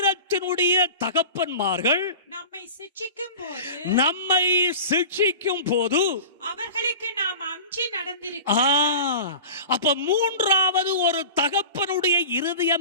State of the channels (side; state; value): both; inverted; correlation -0.35